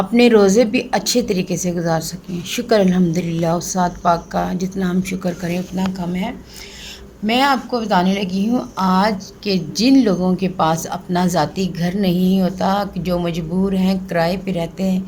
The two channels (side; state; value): both; identical; correlation 1.00